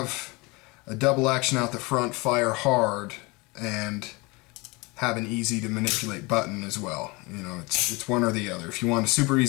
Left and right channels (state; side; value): quieter; right; 25.6 dB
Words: a double action out the front fire hard and have an easy to manipulate button as well. It's one or the other. If you want a super